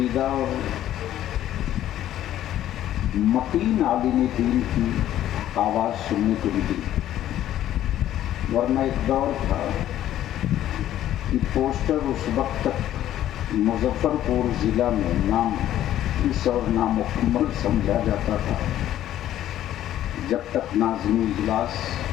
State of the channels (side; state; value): right; quieter; 12.3 dB